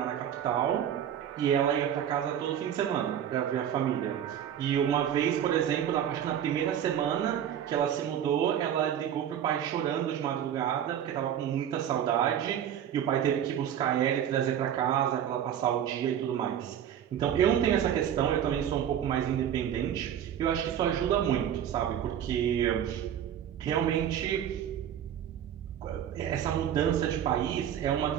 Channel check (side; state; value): left; quieter; 9.7 dB